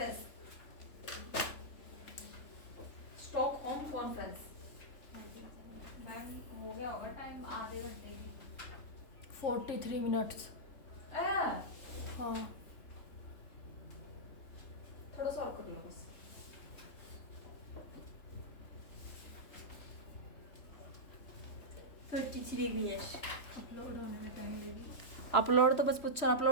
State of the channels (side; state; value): right; late; 3.4 ms